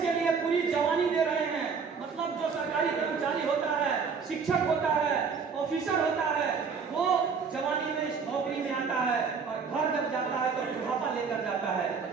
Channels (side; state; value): left; quieter; 5.6 dB